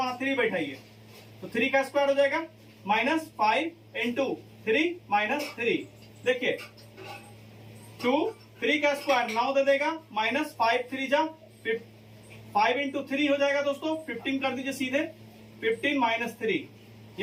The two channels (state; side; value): identical; both; correlation 1.00